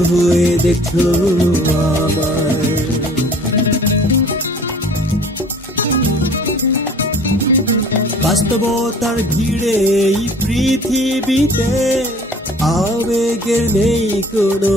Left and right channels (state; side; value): normal; both; correlation 0.50